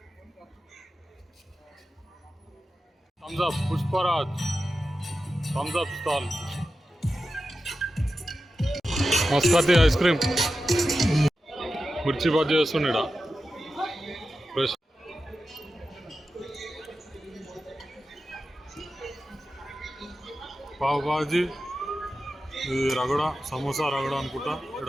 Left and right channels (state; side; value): normal; both; correlation 0.92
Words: thumbs up Pushparaj thumbs up stall Maskati ice cream mirchi bajji చేస్తుండేడా ఫ్రెష్ పావ్ బాజీ ఇది రగడ సమోసా రగడ అనుకుంటా